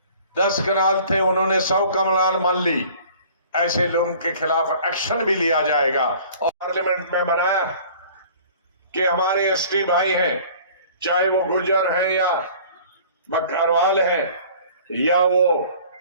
10 कनाल थे, उन्होंने 100 कनाल मान ली। ऐसे लोगों के खिलाफ एक्शन भी लिया जाएगा। और पार्लियामेंट में बनाया कि हमारे एसटी भाई हैं, चाहे वो गुर्जर हैं या बकरवाल हैं या वो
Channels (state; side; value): inverted; both; correlation -0.49